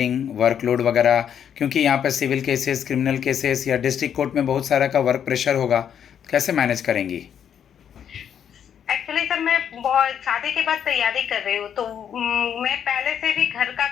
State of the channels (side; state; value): right; quieter; 8.7 dB